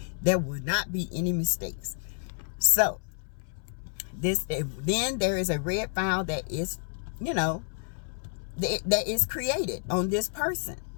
there will not be any mistakes. So then there is a red file that is, you know, that is created on this person.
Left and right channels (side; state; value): right; silent; 58 dB below the other